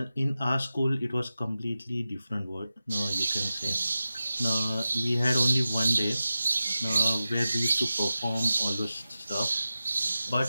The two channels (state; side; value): inverted; both; correlation -0.93